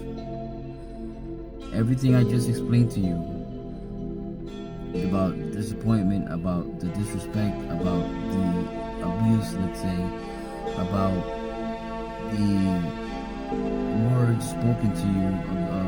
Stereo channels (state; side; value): identical; both; correlation 1.00